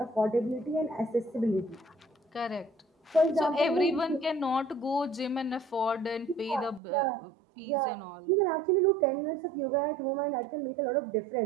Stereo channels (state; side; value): drops out; left; at 6.8 s